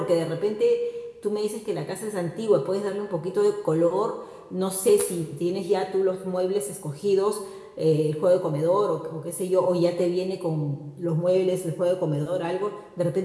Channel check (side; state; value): both; identical; correlation 1.00